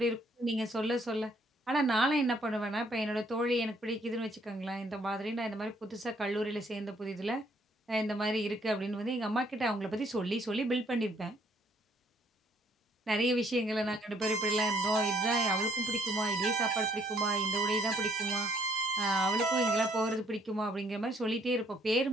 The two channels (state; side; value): normal; both; correlation 0.65